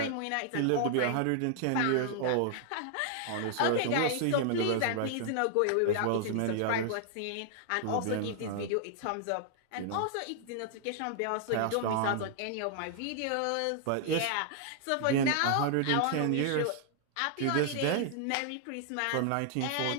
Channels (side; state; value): both; different; correlation 0.00